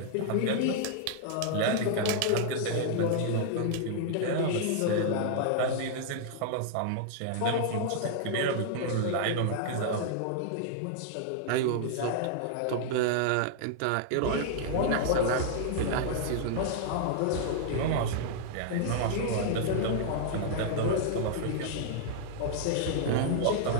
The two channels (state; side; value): different; both; correlation -0.01